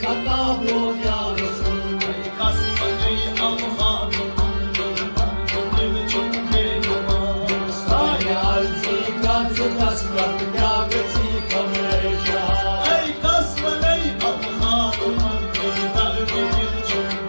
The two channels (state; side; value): inverted; both; correlation -1.00